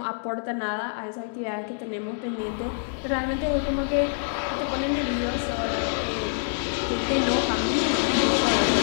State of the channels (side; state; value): right; silent; digital silence